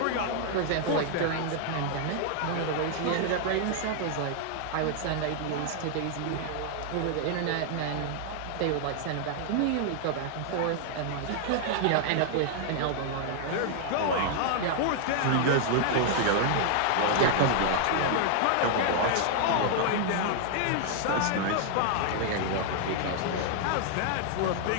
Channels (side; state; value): both; different; correlation 0.00